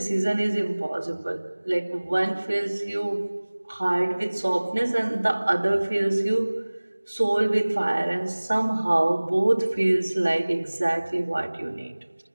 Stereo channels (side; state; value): both; inverted; correlation -1.00